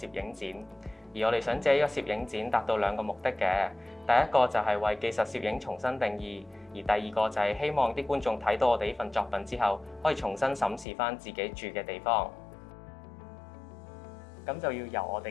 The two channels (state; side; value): drops out; right; at 10.9 s